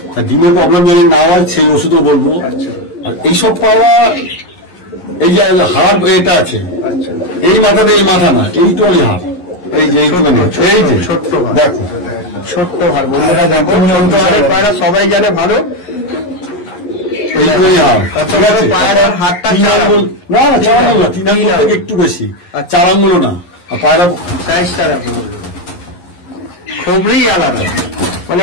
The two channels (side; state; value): right; late; 11 ms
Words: তা ডিমের প্রবলেম যদি না হয় সেই ওষুধও বলবো। আর এইসব পায়রা এই যে হাড় এটা আছে, এই মাথাতে এই মাথা না, এইটুখানি হাড়, এই যে এইটুখানি, এই যে দেখো ছোট্ট হার বন্ধুরা, দেখো ছোট্ট হারের পায়রা সবাই জানে ভালো। এইটুখানি হাড়, ঠিক আছে? পায়রার হাতটা 3 আঙ্গুল না, 4 আঙ্গুল না, 3 আঙ্গুল থেকে একটু বেশি, 4 আঙ্গুলও না। আর পায়রা সাইজটা দেখো, খুবই আলাদা, মানে